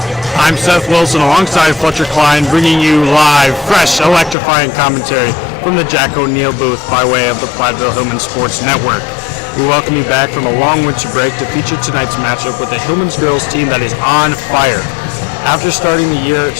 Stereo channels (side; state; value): right; drops out; at 4.4 s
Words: I'm Seth Wilson alongside Fletcher Klein, bringing you live, fresh, electrifying commentary from the Jack O'Neill booth by way of the Platteville Hillman Sports Network. We welcome you back from a long winter break to feature tonight's matchup with the Hillman's girls team that is on fire. After starting the year